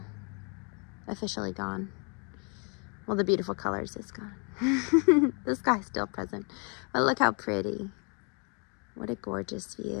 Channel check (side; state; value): right; quieter; 35.5 dB